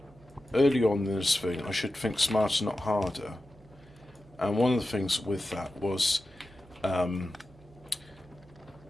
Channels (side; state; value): right; noise; hum, 25 dB below the sound